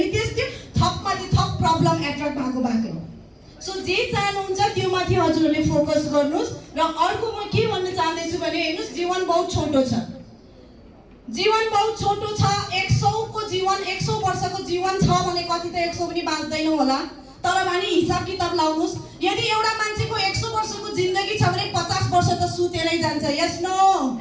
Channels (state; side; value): identical; both; correlation 1.00